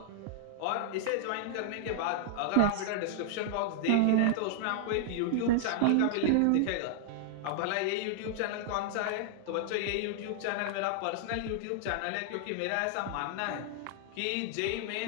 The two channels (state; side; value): different; both; correlation -0.01